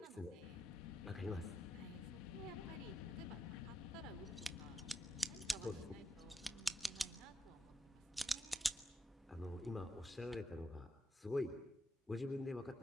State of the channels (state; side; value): normal; both; correlation 0.82